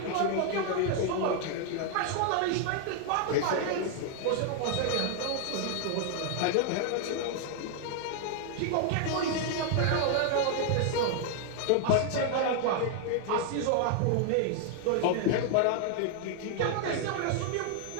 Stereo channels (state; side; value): different; both; correlation 0.00